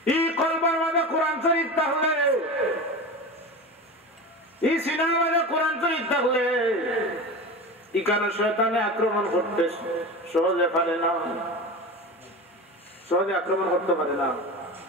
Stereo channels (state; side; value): normal; both; correlation 0.28